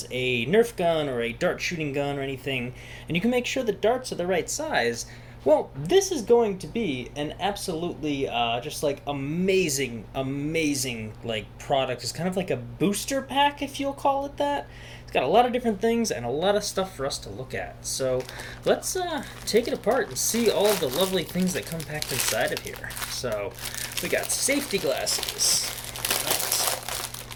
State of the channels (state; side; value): identical; both; correlation 1.00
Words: a Nerf gun or a dart shooting gun or anything, and you can make sure the darts are the right size, well, this is going to be an absolutely just like amazing like product. It's kind of like a booster pack, if you'll call it that. It's got a lot of different things and a lot of stuff for us to look at. So let's take it apart and see all of the lovely things that come packed inside of here. So we got safety glasses.